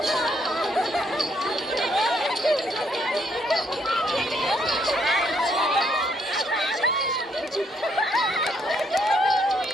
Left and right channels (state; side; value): normal; both; correlation 0.71